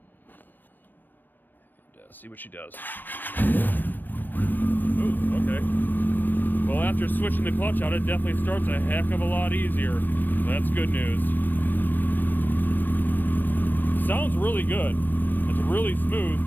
and see what she does. Ooh, okay. Well, after switching the clutch out, it definitely starts a heck of a lot easier. That's good news. Sounds really good. It's really smooth.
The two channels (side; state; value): right; late; 0.092 ms